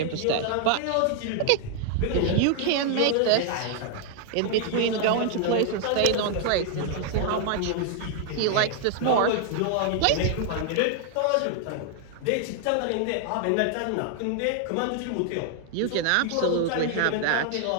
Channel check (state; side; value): different; both; correlation 0.00